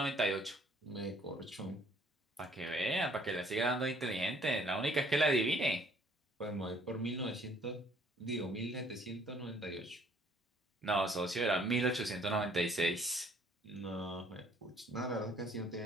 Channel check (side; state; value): both; normal; correlation 0.60